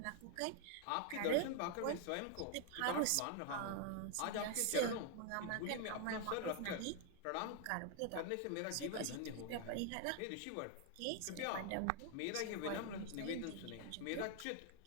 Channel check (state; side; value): different; both; correlation 0.00